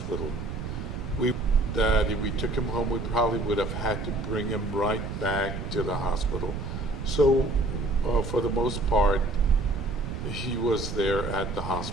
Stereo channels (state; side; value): noise; right; rumble, 6 dB below the sound